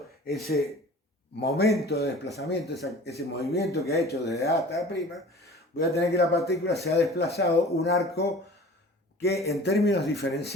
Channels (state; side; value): normal; both; correlation 0.43